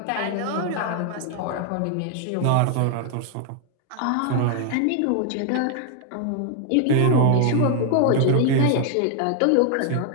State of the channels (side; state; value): both; different; correlation 0.00